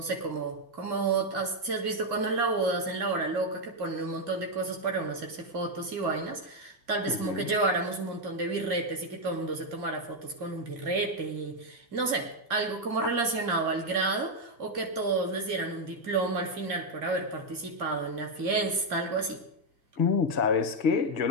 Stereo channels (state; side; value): late; left; 2.3 ms